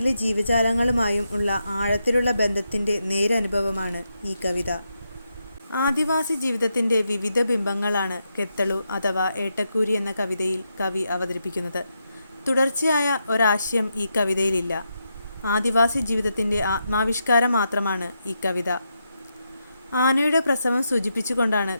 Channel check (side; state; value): both; inverted; correlation -0.84